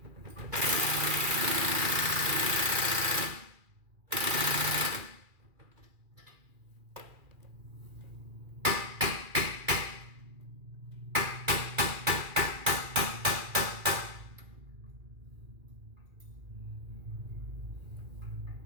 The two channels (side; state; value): left; late; 2.4 ms